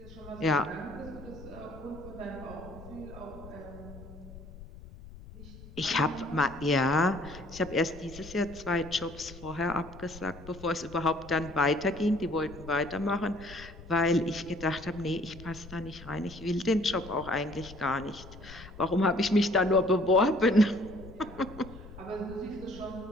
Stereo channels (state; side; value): noise; left; rumble, 16 dB below the sound